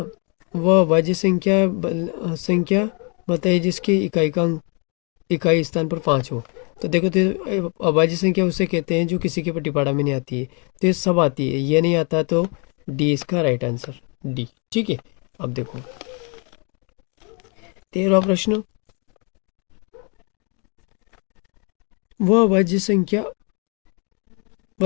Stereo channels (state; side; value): quieter; right; 34.6 dB